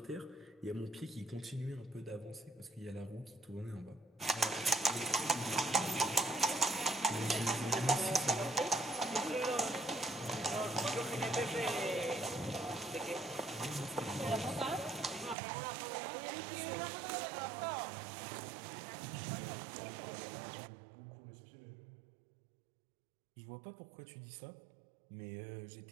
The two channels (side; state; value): left; drops out; at 15.4 s